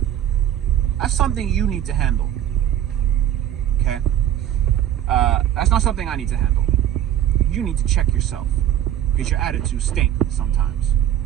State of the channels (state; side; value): quieter; left; 11.3 dB